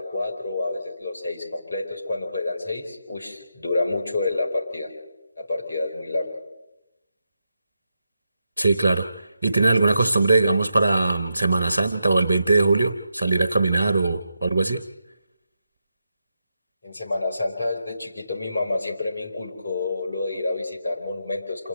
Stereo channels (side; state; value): both; inverted; correlation -0.85